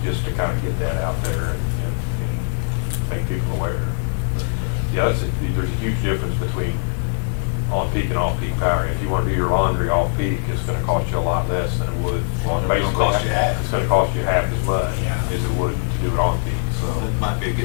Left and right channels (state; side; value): silent; right; 65 dB below the other